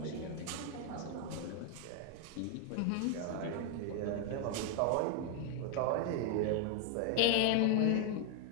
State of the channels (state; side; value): different; both; correlation 0.00